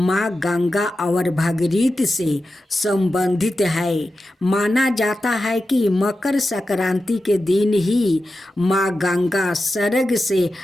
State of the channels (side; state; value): both; normal; correlation 0.92